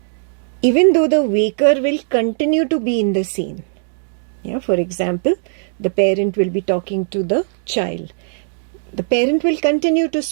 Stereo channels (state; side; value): silent; left; digital silence